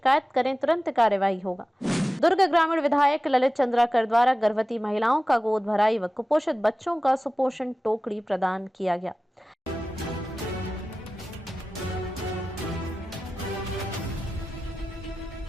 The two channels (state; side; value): normal; both; correlation 0.96